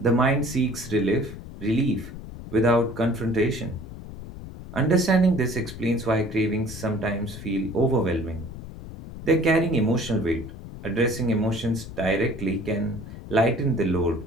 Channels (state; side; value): noise; left; rumble, 12 dB below the sound